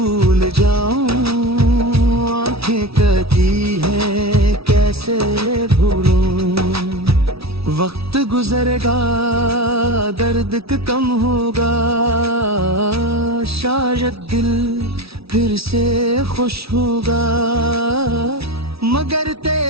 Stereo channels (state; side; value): late; left; 0.76 ms